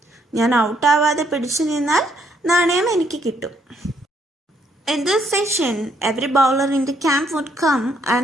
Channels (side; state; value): both; normal; correlation 0.70